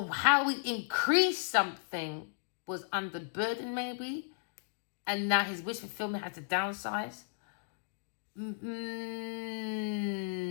how we increase something was under burden maybe. And now his wish fulfillment had to downsize.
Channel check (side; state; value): right; silent; digital silence